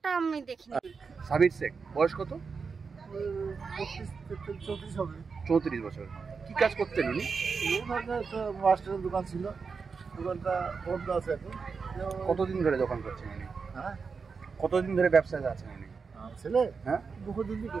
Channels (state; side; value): quieter; left; 5.2 dB